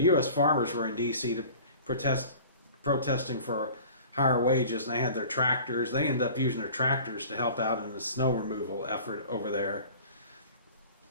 farmers were in D.C. to protesting for higher wages, and they had their tractors. They ended up using their tractors to help out in the snow removal effort over there.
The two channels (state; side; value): inverted; both; correlation -0.44